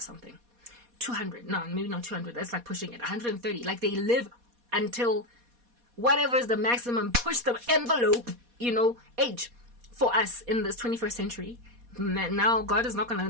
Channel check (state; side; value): late; left; 4.2 ms